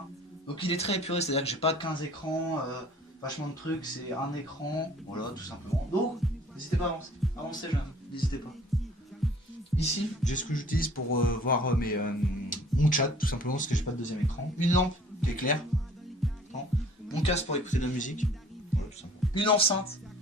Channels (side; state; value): both; normal; correlation 0.52